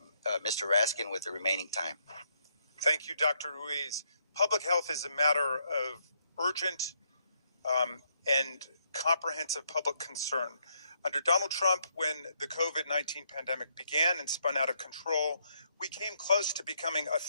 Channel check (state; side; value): inverted; both; correlation -0.74